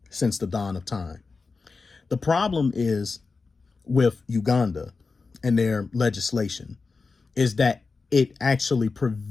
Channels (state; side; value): quieter; right; 4.3 dB